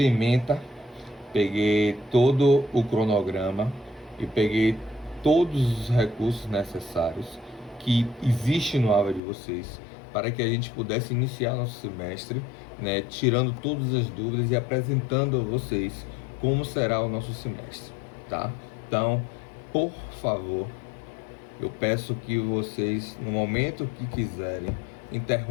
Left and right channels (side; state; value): right; drops out; at 9.2 s